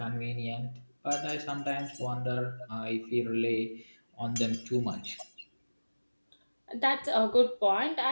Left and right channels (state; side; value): inverted; both; correlation -1.00